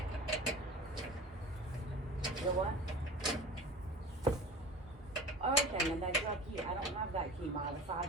And that's your key. I don't have that key, my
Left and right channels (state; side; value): normal; both; correlation 0.37